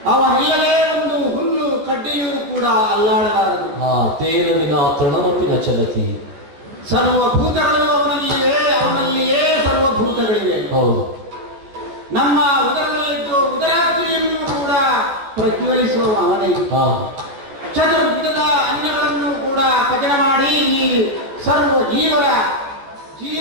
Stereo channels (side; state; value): left; late; 14 ms